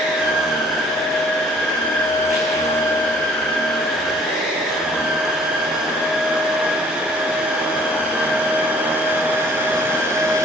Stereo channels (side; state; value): both; normal; correlation 0.56